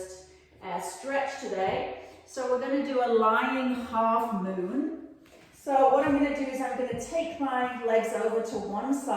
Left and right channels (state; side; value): identical; both; correlation 1.00